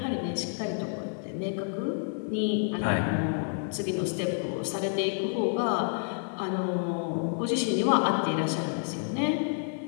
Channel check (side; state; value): right; silent; digital silence